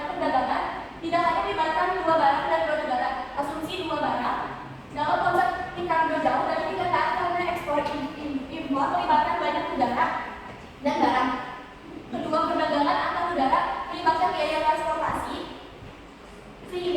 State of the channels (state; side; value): identical; both; correlation 1.00